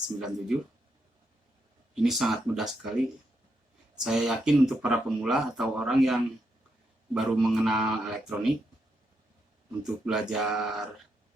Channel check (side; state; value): both; normal; correlation 0.81